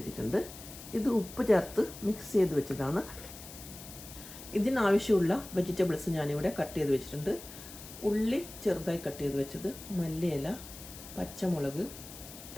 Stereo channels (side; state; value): left; noise; hiss, 14 dB below the sound